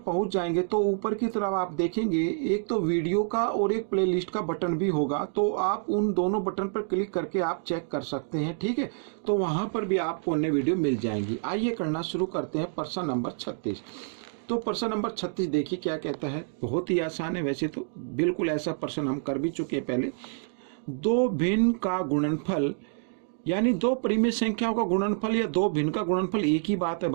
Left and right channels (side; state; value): left; silent; digital silence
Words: जाएंगे तो ऊपर की तरफ आप देखेंगे एक तो वीडियो का और एक प्लेलिस्ट का बटन भी होगा, तो आप उन दोनों बटन पर क्लिक करके आप चेक कर सकते हैं। ठीक है, तो वहां पर भी आपको अन्य वीडियो मिल जाएंगी। आइए करना शुरू करते हैं प्रश्न नंबर 36। तो प्रश्न नंबर 36 देखिए क्या कहता है। बहुत ही आसान है, वैसे तो बिल्कुल ऐसा प्रश्न हम कर भी चुके हैं पहले। दो भिन्न का गुणनफल यानी दो परिमेय संख्याओं का गुणनफल या दो भिन्न का गुणनफल एक ही बात है